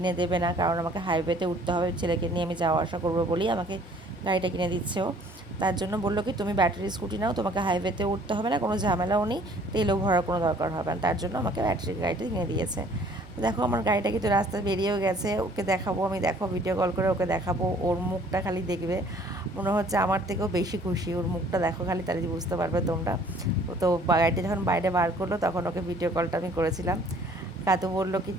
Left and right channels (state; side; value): normal; both; correlation 0.56